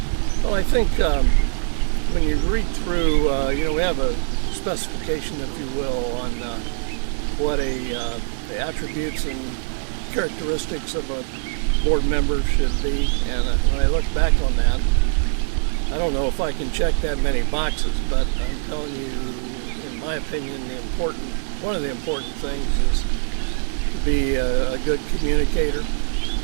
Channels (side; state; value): left; silent; 64 dB below the other